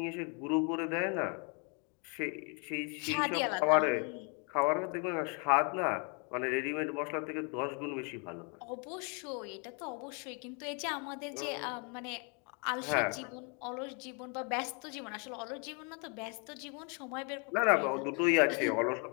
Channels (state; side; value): quieter; right; 36.1 dB